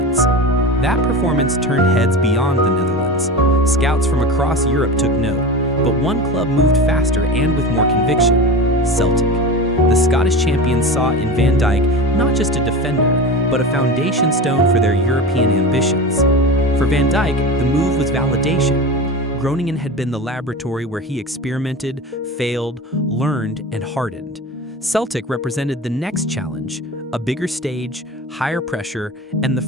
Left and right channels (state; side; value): normal; both; correlation 0.28